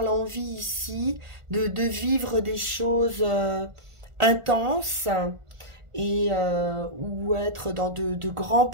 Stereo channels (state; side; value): late; left; 1.4 ms